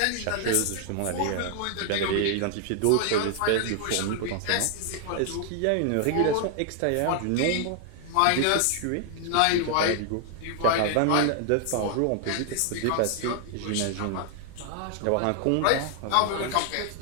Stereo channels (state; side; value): different; both; correlation 0.00